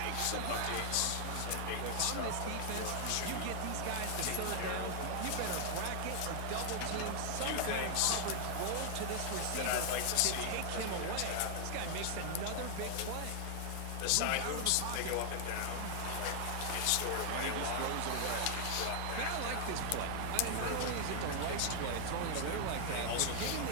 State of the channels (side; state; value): both; different; correlation 0.00